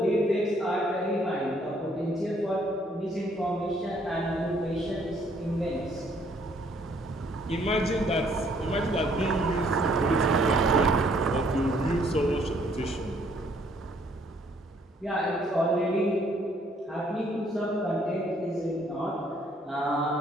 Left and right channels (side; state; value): both; normal; correlation 0.65